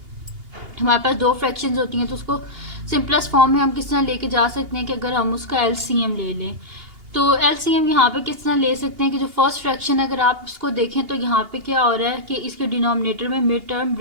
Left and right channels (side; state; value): left; late; 2.8 ms